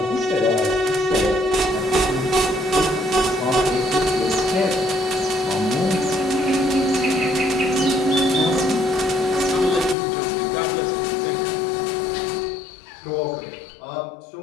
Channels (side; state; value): right; drops out; at 10.0 s